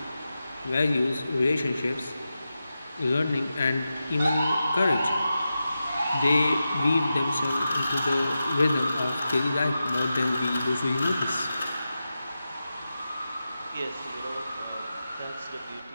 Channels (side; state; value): both; inverted; correlation -0.91